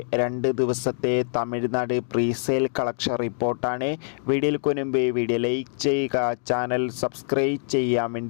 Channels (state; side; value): silent; right; 62 dB below the other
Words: 2 ദിവസത്തെ തമിഴ്നാട് പ്രീസെയിൽ കളക്ഷൻ റിപ്പോർട്ടാണ്. വീഡിയോയ്ക്ക് മുൻപ് വീഡിയോ ലൈക്ക് ചെയ്യുക, ചാനൽ സബ്സ്ക്രൈബ് ചെയ്യാൻ